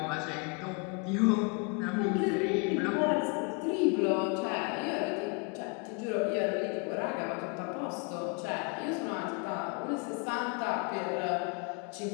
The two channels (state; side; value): quieter; right; 33.1 dB